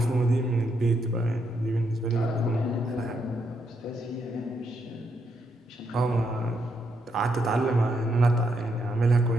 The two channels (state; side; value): normal; both; correlation 0.78